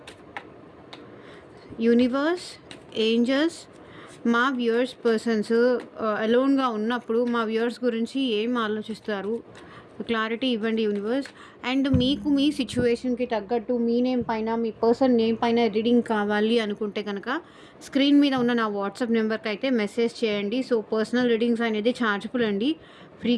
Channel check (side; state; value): both; identical; correlation 1.00